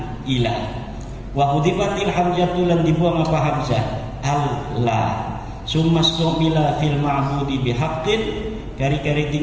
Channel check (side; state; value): both; identical; correlation 1.00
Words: ilah wa hudifatil hamzatul lan dibuang apa hamzah Allah. Summa stumila fil ma'budi bihaqqin kari-kari